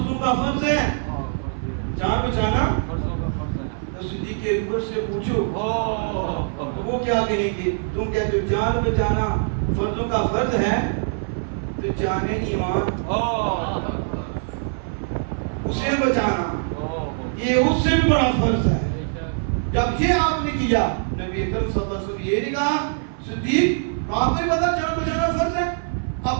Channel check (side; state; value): left; silent; 56 dB below the other